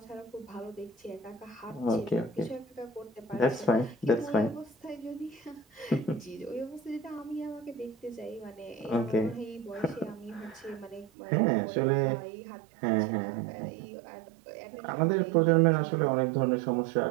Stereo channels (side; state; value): left; drops out; at 11.1 s